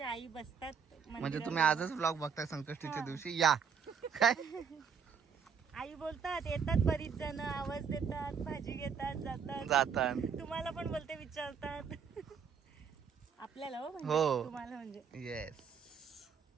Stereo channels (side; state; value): left; quieter; 6.7 dB